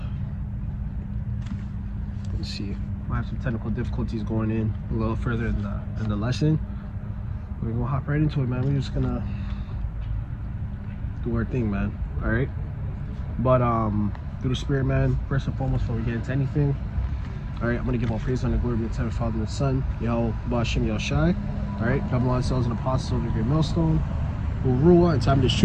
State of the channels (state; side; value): identical; both; correlation 1.00